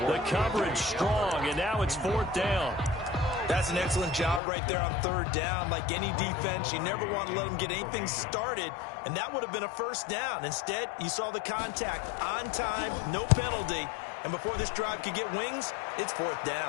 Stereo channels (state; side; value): drops out; right; at 4.4 s